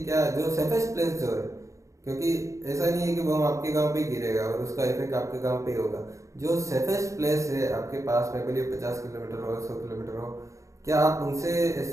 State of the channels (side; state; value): left; late; 0.15 ms